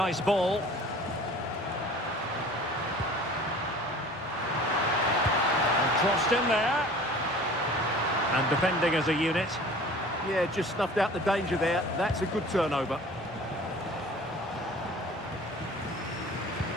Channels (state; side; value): normal; both; correlation 0.45